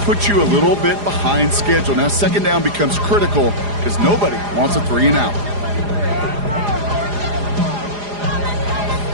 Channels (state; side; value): late; left; 4.9 ms